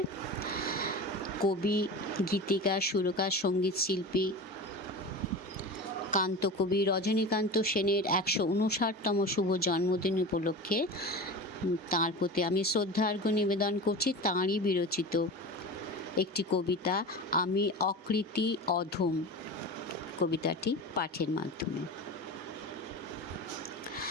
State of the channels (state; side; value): normal; both; correlation 0.30